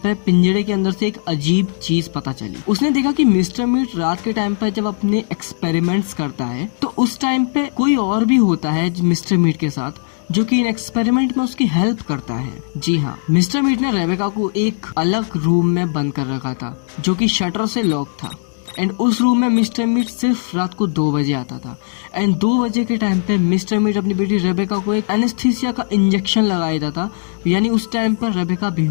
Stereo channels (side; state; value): right; silent; digital silence